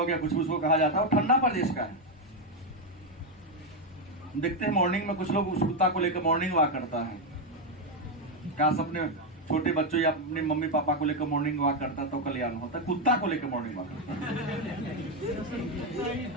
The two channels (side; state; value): both; normal; correlation 0.05